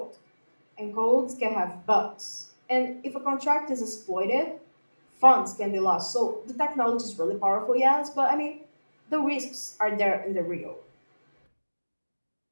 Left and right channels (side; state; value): both; inverted; correlation -1.00